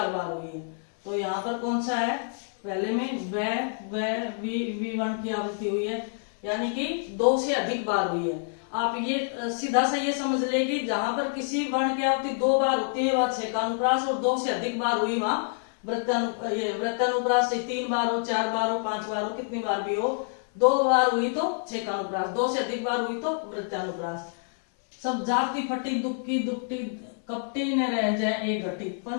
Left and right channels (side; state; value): right; silent; 60 dB below the other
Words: बार हुई है। तो यहाँ पर कौन सा है, पहले में व वी वर्ण की आवृत्ति हुई है, यानी कि 2 से अधिक बार हुई है। आप ये सीधा सा ये समझ ले कि जहां पर किसी वर्ण की आवृत्ति 2 बार होती है वह छेकानुप्रास, और 2 से अधिक बार हुई वहां वृत्तानुप्रास। 3 बार हो, 4 बार हो, 5 बार हो, कितनी बार भी हो, 2 बार हुई तो छेकानुप्रास, 2 से अधिक बार हुई तो वृत्तानुप्रास। सब जाति फटी, दुक्की, दुपटी, कपटी न रह जाए एक घटी,